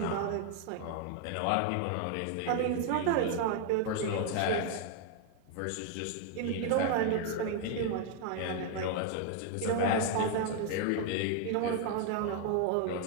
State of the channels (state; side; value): different; both; correlation 0.00